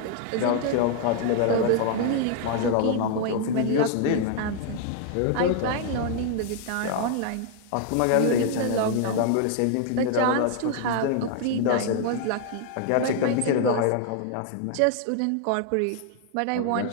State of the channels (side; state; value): both; different; correlation 0.00